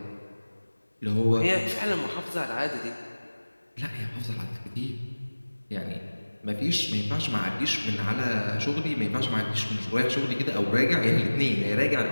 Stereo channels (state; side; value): inverted; both; correlation -1.00